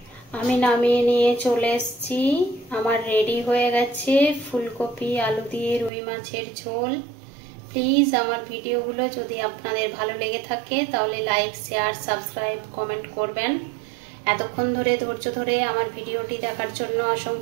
আমি নামিয়ে নিয়ে চলে এসেছি। আমার রেডি হয়ে গেছে ফুলকপি আলু দিয়ে রুই মাছের ঝোল। প্লিজ আমার ভিডিওগুলো যদি আপনাদের ভালো লেগে থাকে তাহলে লাইক, শেয়ার, সাবস্ক্রাইব, কমেন্ট করবেন। এতক্ষণ ধরে ধৈর্য ধরে আমার ভিডিওটি দেখার জন্য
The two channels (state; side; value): drops out; left; at 5.9 s